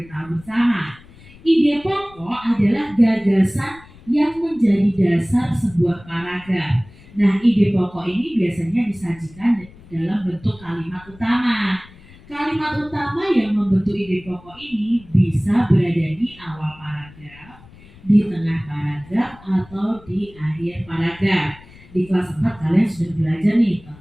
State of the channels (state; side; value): noise; left; rumble, 23 dB below the sound